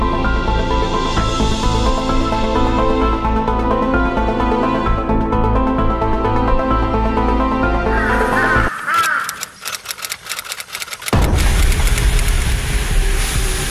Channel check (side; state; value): both; identical; correlation 1.00